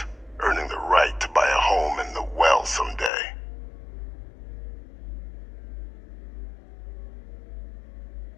earning the right to buy a home in the well someday.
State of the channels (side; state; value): right; drops out; at 3.1 s